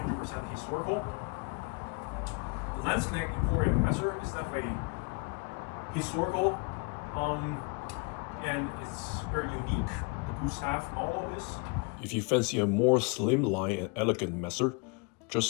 historical. The Landsknecht Emporium messer is definitely historical, and it's very unique. The Gustav model is. If you fancy a more slimline and elegant messer,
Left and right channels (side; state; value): right; quieter; 32.3 dB